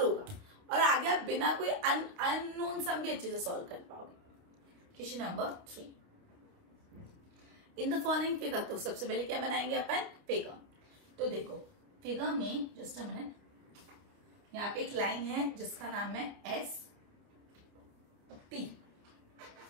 और आगे आप बिना कोई अननोन सम भी अच्छे से सॉल्व कर पाओगे। Question number 3। In the following figure, तो सबसे पहले क्या बनाएंगे अपन? फिगर। तो देखो फिगर में, जस्ट अ मिनट, यहाँ पे एक लाइन है जिसका नाम है ST।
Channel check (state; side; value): late; left; 29 ms